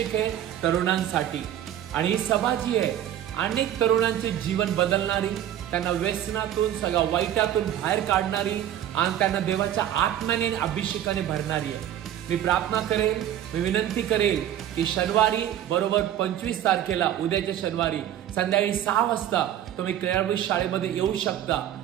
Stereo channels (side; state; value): left; quieter; 11.3 dB